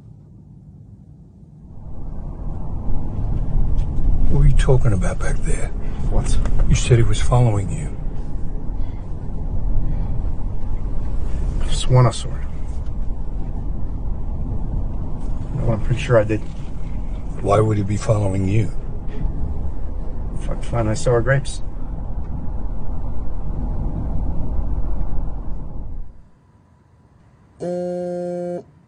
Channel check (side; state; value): both; identical; correlation 1.00